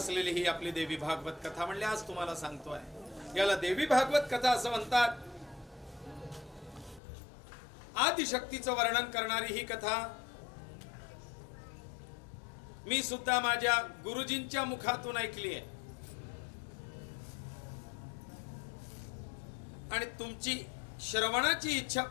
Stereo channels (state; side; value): drops out; right; at 7.0 s